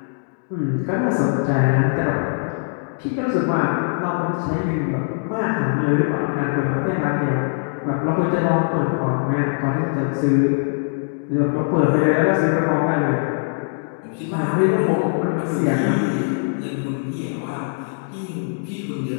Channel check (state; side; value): silent; right; digital silence